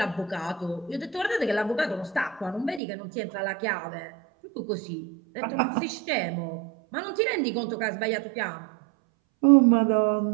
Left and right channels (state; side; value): drops out; left; at 2.8 s